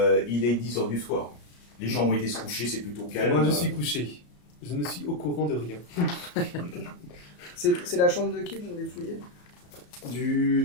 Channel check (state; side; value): late; right; 34 ms